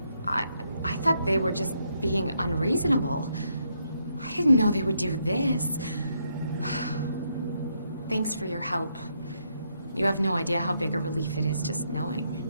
I thought they were just being unreasonable. I didn't know they would do this. Thanks for your help. You have no idea how big a relief it is just knowing.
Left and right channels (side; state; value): both; inverted; correlation -0.76